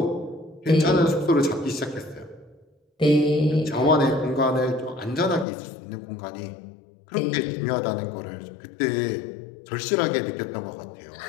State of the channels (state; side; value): drops out; right; at 5.5 s